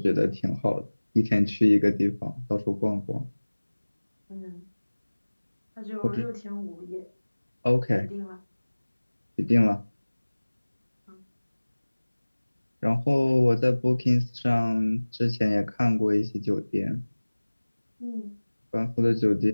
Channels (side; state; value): both; inverted; correlation -1.00